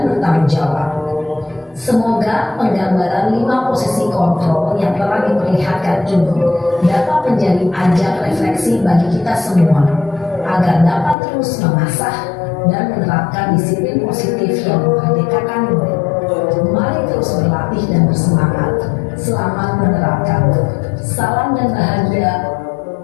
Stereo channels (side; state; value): right; drops out; at 11.2 s